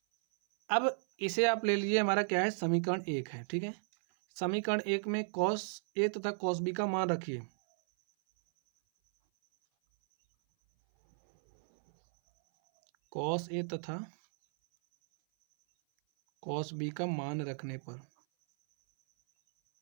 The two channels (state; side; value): silent; left; 55 dB below the other